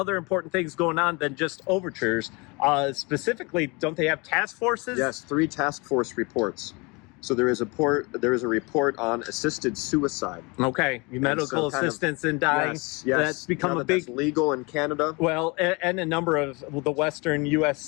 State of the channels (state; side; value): quieter; right; 27.8 dB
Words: important things going on than just overtures. Specifically, don't they have task forces? Yes, 3 task force reports. So there is a report on assisted suicide. Okay, medical assistance in dying. Yes, that's become a big that's legal in Canada. Well, and a number of the Western